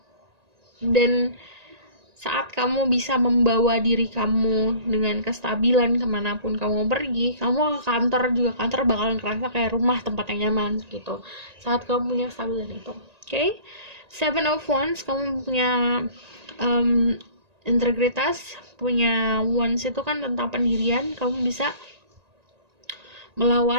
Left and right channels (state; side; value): late; left; 1.9 ms